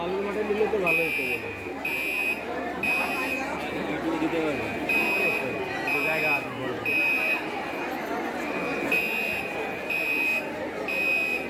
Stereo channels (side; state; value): both; identical; correlation 1.00